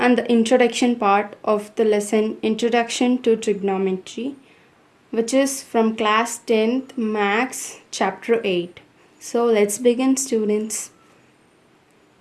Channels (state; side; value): identical; both; correlation 1.00